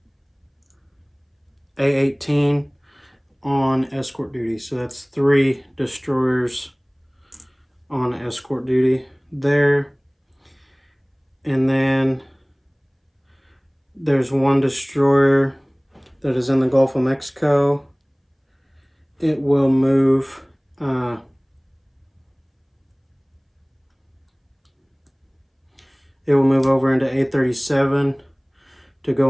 A18 on escort duty. So that's 3 destroyers on escort duty there. And then there's 1 destroyer that is in the Gulf of Mexico. It will move over into A37 to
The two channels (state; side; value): identical; both; correlation 1.00